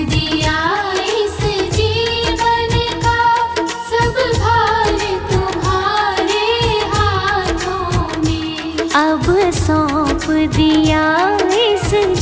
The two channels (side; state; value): both; identical; correlation 1.00